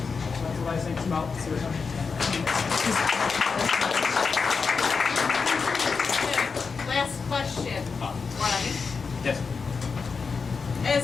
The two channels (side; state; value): right; quieter; 5.1 dB